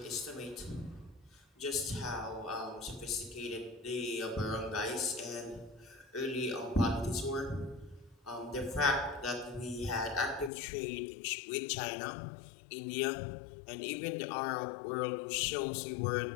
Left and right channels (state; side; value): drops out; right; at 10.5 s